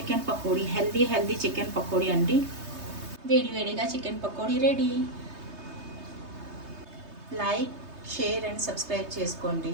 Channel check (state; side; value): late; left; 3.2 ms